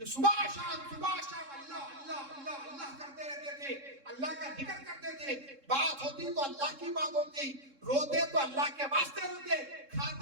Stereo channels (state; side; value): late; left; 3.7 ms